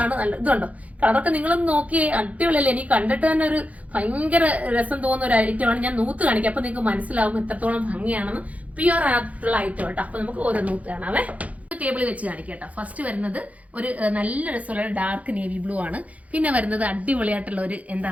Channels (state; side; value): late; left; 0.069 ms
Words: നല്ല ഇതുണ്ടോ കളറൊക്കെ നിങ്ങളൊന്ന് നോക്കിയേ, അടിപൊളിയല്ലേ. എനിക്ക് കണ്ടിട്ട് തന്നെ ഒരു ഭയങ്കര രസം തോന്നുന്ന ഒരു ഐറ്റമാണ്. ഞാൻ നൂത്ത് കാണിക്കാം, അപ്പൊ നിങ്ങൾക്ക് മനസ്സിലാവും എത്രത്തോളം ഭംഗിയാണെന്ന്. പ്യുവർ ആയിട്ടുള്ള ഐറ്റം കേട്ടോ. അപ്പൊ നമുക്ക് ഓരോ നൂത്ത് കാണാവേ. ടേബിളിൽ വെച്ച് കാണിക്കട്ടോ. ഫസ്റ്റ് വരുന്നത് ഒരു നല്ല രസമുള്ള ഡാർക്ക് നേവി ബ്ലൂ ആണ്. പിന്നെ വരുന്നത് അടിപൊളിയായിട്ടുള്ള ഒരു